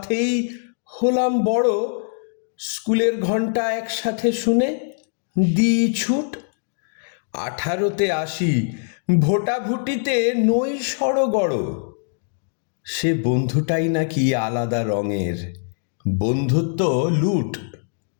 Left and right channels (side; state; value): right; silent; digital silence